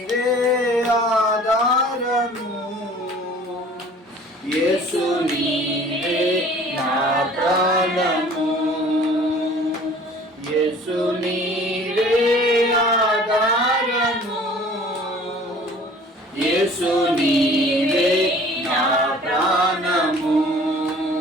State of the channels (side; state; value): both; normal; correlation 0.49